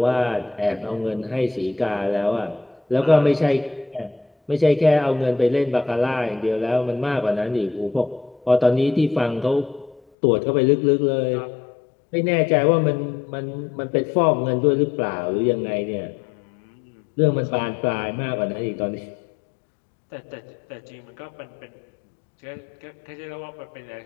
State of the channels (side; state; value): right; drops out; at 10.0 s